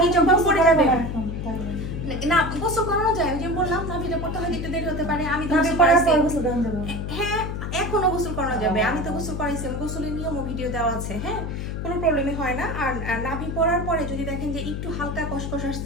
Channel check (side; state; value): left; noise; hum, 4 dB below the sound